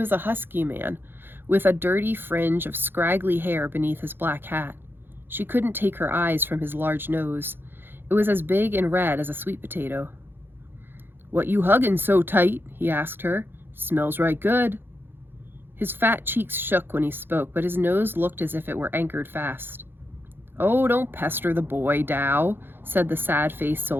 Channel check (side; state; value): left; late; 0.10 ms